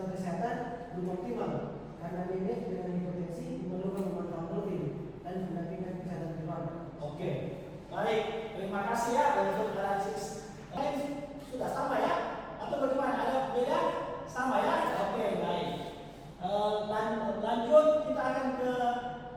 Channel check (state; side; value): identical; both; correlation 1.00